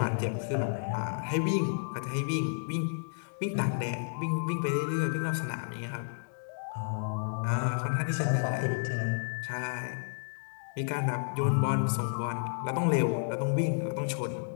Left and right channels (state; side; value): silent; right; digital silence